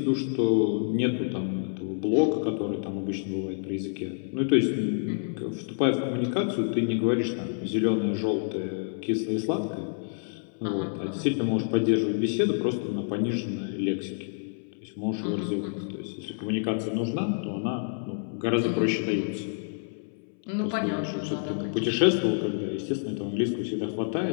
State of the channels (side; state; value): right; silent; 59 dB below the other